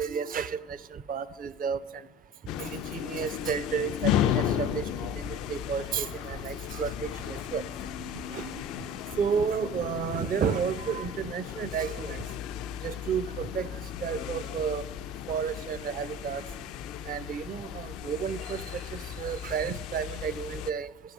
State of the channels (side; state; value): both; normal; correlation 0.39